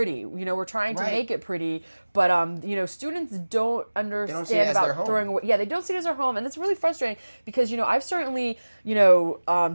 We're trying to make it pretty, but students don't understand about throwing away. Yeah, they don't see it as their home, and it's really frustrating because I've certainly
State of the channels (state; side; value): inverted; both; correlation -1.00